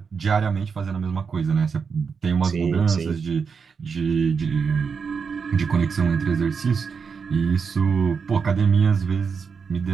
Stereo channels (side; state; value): left; quieter; 5.8 dB